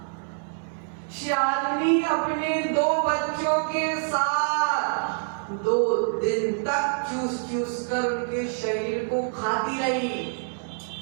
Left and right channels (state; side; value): silent; left; digital silence